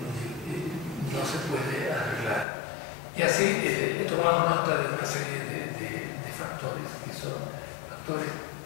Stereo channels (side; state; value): right; drops out; at 2.5 s